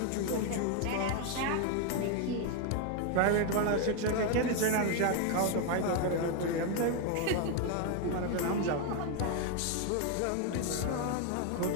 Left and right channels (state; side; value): different; both; correlation 0.01